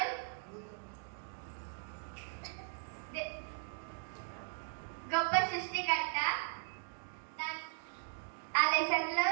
గొప్ప సృష్టికర్త. ఆ లెసన్లో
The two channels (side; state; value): left; silent; digital silence